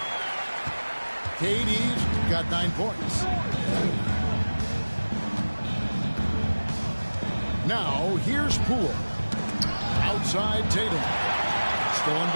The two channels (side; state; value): both; inverted; correlation -1.00